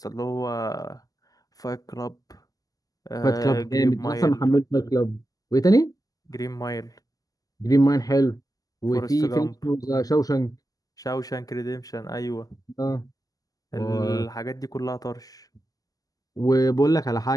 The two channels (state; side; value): late; right; 0.17 ms